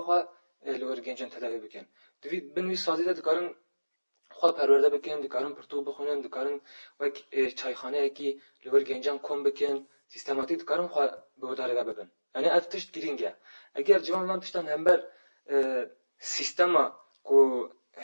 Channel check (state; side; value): inverted; both; correlation -1.00